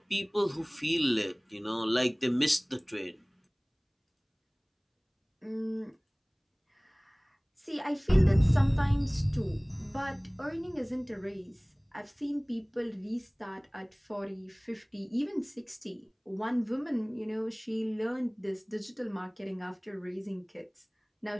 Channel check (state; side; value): identical; both; correlation 1.00